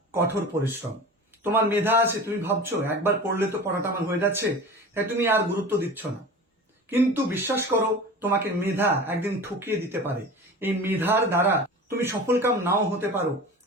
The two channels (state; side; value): normal; both; correlation 0.35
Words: কঠোর পরিশ্রম। তোমার মেধা আছে, তুমি ভাবছো একবার পড়লে তো পড়াটা আমার হয়ে যাচ্ছে, তাই তুমি আর গুরুত্ব দিচ্ছ না। কিন্তু বিশ্বাস করো, তোমাকে মেধা একদিন ঠকিয়ে দিতে পারে। এই মেধার দ্বারা তুমি সফলকাম নাও হতে পারো,